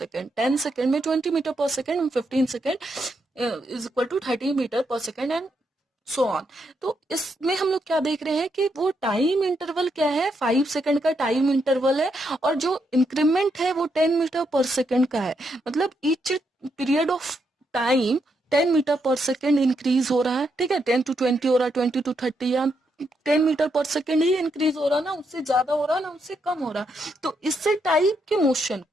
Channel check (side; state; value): both; normal; correlation 0.79